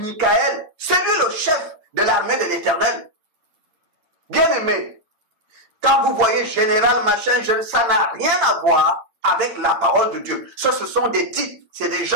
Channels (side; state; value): left; late; 8.7 ms